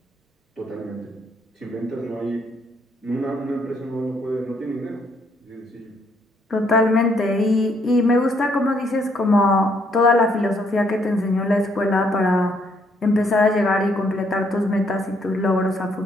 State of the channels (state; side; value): normal; both; correlation 0.70